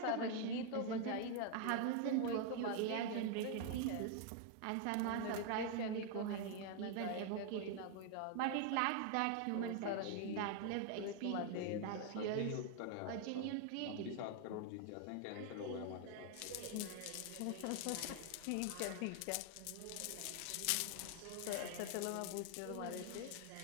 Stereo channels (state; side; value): different; both; correlation 0.00